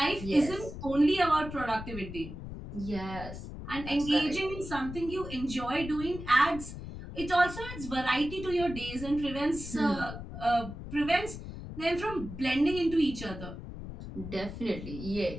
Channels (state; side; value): noise; left; rumble, 10 dB below the sound